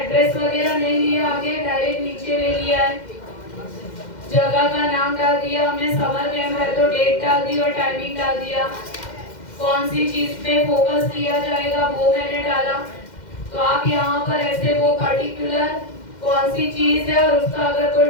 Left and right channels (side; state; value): right; late; 2.1 ms